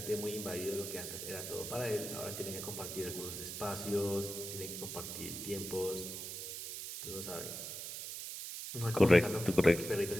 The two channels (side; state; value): right; noise; hiss, 7 dB below the sound